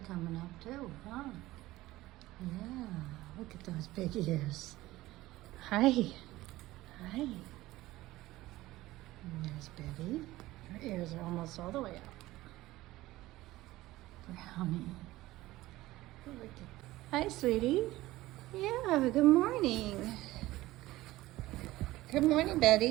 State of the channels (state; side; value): quieter; left; 17.4 dB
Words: up too, huh? Yeah, look at those big ears. Hi. Hi. And there's Betty. Her ears are almost all the way up. Brownie. Look at. Hi, sweetie. Yeah, good morning. Good morning,